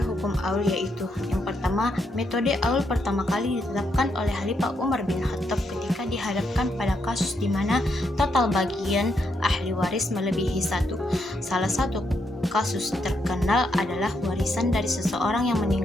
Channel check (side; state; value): both; normal; correlation 0.79